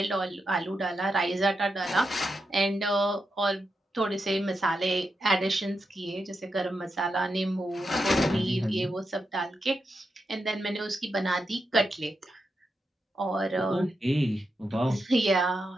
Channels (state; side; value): normal; both; correlation 0.86